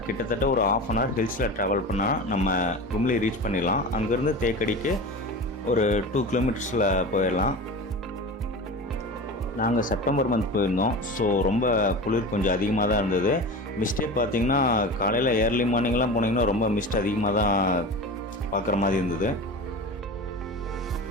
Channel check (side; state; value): both; normal; correlation 0.30